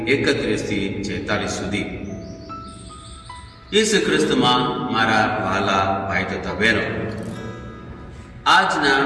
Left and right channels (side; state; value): both; identical; correlation 1.00